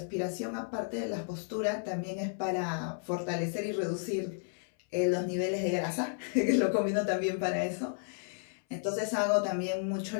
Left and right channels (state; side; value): silent; right; 56 dB below the other